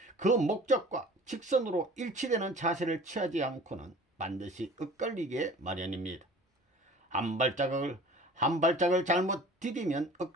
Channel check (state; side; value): normal; both; correlation 0.45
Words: 그 목적과 직선으로 일치되는 자세를 취하지 않고는 반드시 엇갈리게 마련입니다. 한 발짝을 잘못 디디면